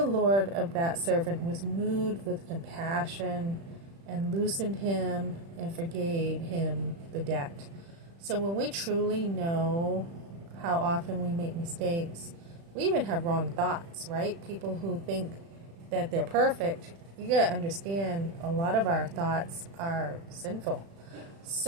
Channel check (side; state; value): left; late; 36 ms